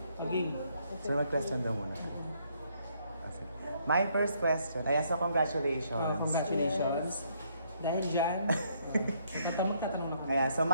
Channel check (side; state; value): both; inverted; correlation -0.70